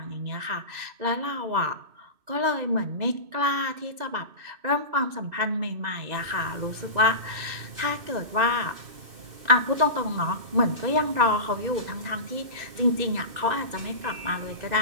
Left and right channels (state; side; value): late; left; 2.6 ms